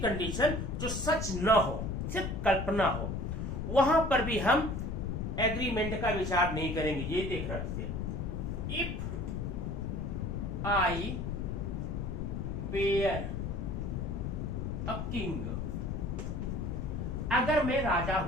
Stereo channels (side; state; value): left; noise; rumble, 3 dB below the sound